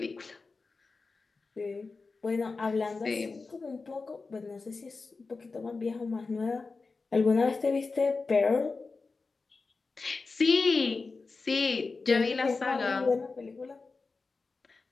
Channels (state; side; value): quieter; right; 4.1 dB